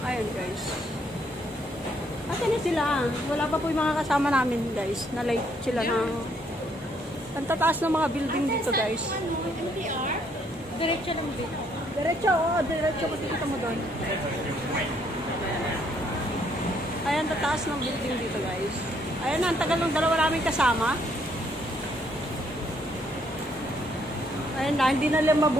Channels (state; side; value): normal; both; correlation 0.69